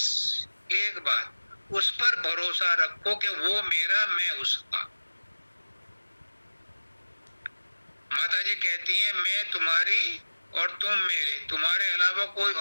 एक बात, उस पर भरोसा रखो कि वो मेरा, मैं उसका। माता जी कहती हैं, मैं तुम्हारी और तुम मेरे, तुम्हारे अलावा कोई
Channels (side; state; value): both; inverted; correlation -1.00